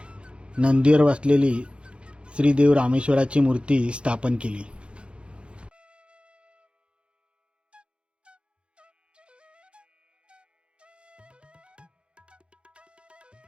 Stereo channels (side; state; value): left; late; 0.057 ms